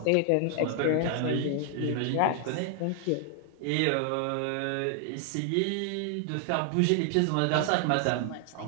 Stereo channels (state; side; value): different; both; correlation 0.00